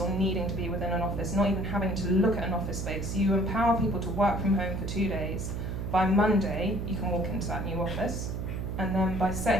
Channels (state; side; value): noise; right; hum, 4 dB below the sound